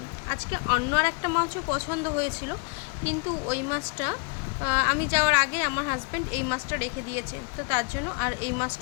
আজকে অন্য আর একটা মাছও পছন্দ হয়েছিল, কিন্তু ওই মাছটা আমি যাওয়ার আগে আমার হাজব্যান্ড এই মাছটা রেখে দিয়েছে, তো তার জন্য আর এই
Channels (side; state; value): right; quieter; 35.2 dB